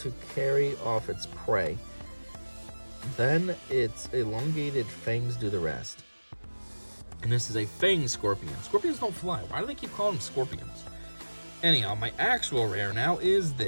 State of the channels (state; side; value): inverted; both; correlation -1.00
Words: carry off its prey. Then its elongated fangs do the rest. And this is a fang scorpion. Scorpions don't fly. Why do they keep calling them scorpions? Anyhow, my actual rare now is